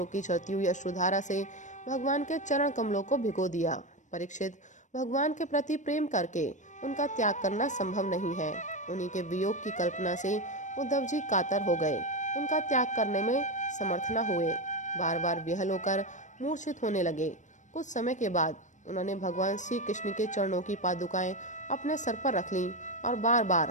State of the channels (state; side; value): late; right; 0.35 ms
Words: की चलती हुई अश्रुधारा से भगवान के चरण कमलों को भिगो दिया। परीक्षित, भगवान के प्रति प्रेम करके उनका त्याग करना संभव नहीं है। उन्हीं के वियोग की कल्पना से उद्धव जी कातर हो गए, उनका त्याग करने में समर्थ न हुए, बार बार विहल होकर मूर्छित होने लगे। कुछ समय के बाद उन्होंने भगवान श्री कृष्ण के चरणों की पादुकाएं अपने सर पर रख लीं और बार